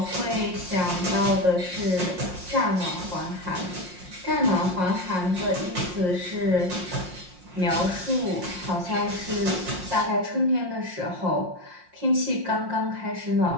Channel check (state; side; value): late; left; 5.6 ms